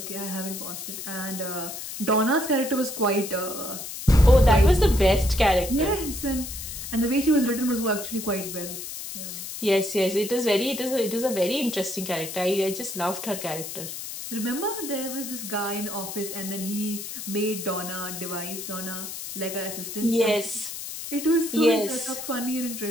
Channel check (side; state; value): left; noise; hiss, 8 dB below the sound